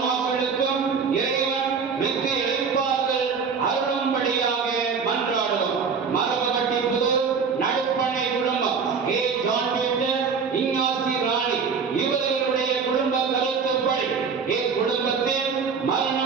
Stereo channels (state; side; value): quieter; left; 5.7 dB